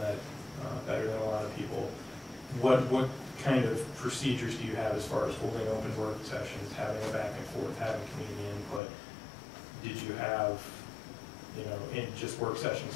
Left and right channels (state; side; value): drops out; right; at 8.8 s